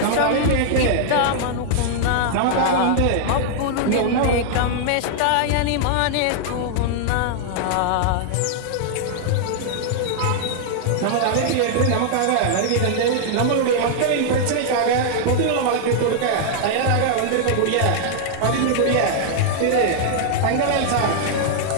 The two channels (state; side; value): different; both; correlation -0.01